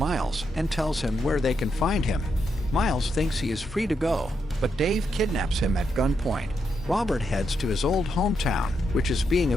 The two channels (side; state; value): both; normal; correlation 0.82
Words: and tells him where they can find him. Miles thinks he is free to go, but Dave kidnaps him at gunpoint. Robert heads to his old hometown, which is being